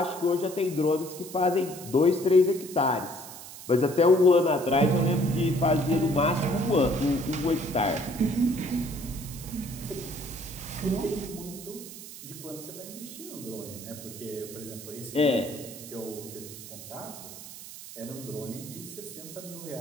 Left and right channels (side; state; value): right; noise; hiss, 14 dB below the sound